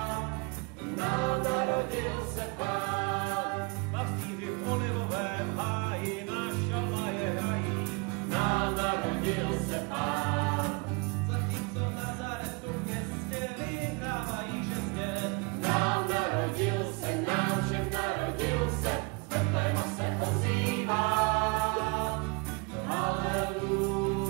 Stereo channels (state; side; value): quieter; left; 30.5 dB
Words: Nám narodil se Pán. Pastýři v olivovém háji na šalaje hrají. Nám narodil se Pán. Zatímco v Nazaretu městě vyhrávají žezně. Nám narodil se, nám všem narodil se, z Betléma se ozývá.